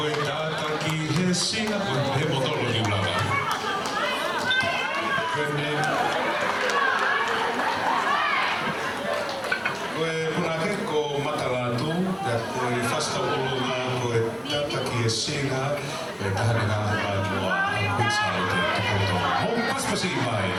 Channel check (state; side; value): identical; both; correlation 1.00